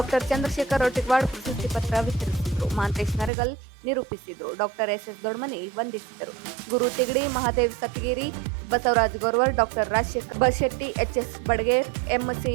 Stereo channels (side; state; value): left; drops out; at 3.3 s